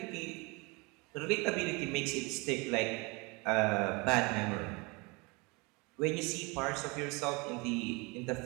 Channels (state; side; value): quieter; left; 27.5 dB